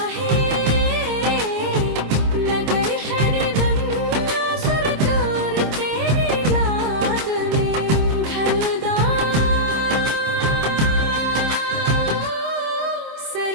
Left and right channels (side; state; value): left; late; 26 ms